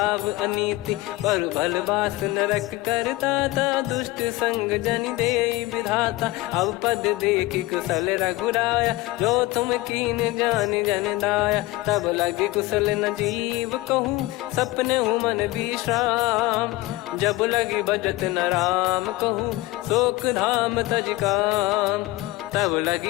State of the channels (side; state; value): right; quieter; 19.2 dB